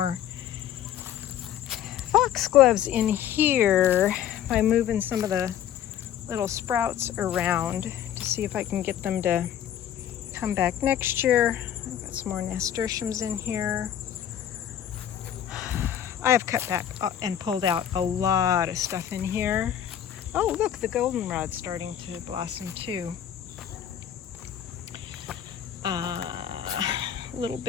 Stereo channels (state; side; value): quieter; right; 10.3 dB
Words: foxgloves in here by moving some of the little sprouts around to see if I can get them to come back next year. I've got some more nasturtiums in here. I have cut back and pulled out a lot of stuff in here. Oh, look, the goldenrod's starting to blossom too. A little